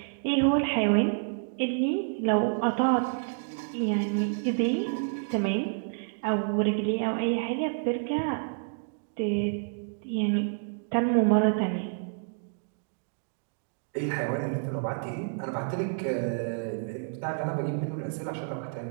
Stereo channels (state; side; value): silent; left; digital silence